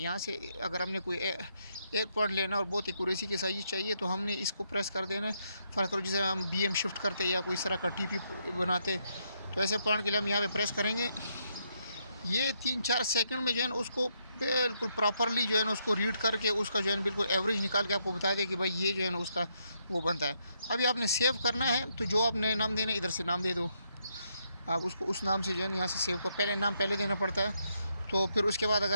से अगर हमने कोई एक पॉइंट लेना और बहुत एक्यूरेसी के साथ चाहिए तो हमने इसको प्रेस कर देना है। फ़र्ज़ करो जैसे हम बीएम शिफ्ट करते या कोई इस तरह का टीपी बनाते, तो ऐसे पॉइंट के लिए हम यहाँ पे प्रेस करेंगे। ये 3-4 सेकंड में जो है ना उसको बिल्कुल प्रॉपरली जो है ना उसको रीड करके उसका जो है ना बिल्कुल एवरेज निकाल के आपको बता दे कि भाई ये जो है ना उसका वो बनता है। अभी आपने सेव करना है तो जो आपने नाम देना है इधर से नाम दे दो। आप उसको उस नाम से जो है ना यहाँ से सेव को पहले नाम पहले देना पड़ता है। तो फिर उसके बाद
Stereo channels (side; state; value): both; inverted; correlation -0.77